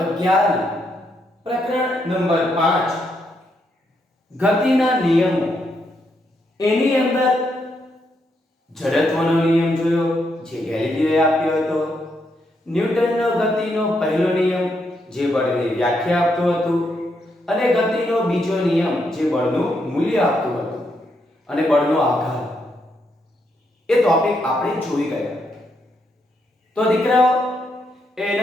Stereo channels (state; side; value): normal; both; correlation 0.78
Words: પ્રકરણ નંબર 5 ગતિના નિયમો એની અંદર જડત્વનો નિયમ જોયો જે ગેલિલીઓએ આપ્યો હતો, ન્યૂટનનો ગતિનો પહેલો નિયમ જે બળની વ્યાખ્યા આપતો હતો, અને ગતિનો બીજો નિયમ જે બળનું મૂલ્ય આપતો હતો અને બળનો આધાર, એ ટોપિક આપણે જોઈ ગયા. તો દીકરાઓ,